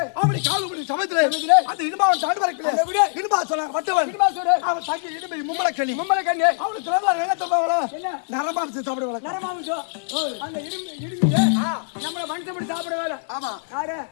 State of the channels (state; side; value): silent; right; digital silence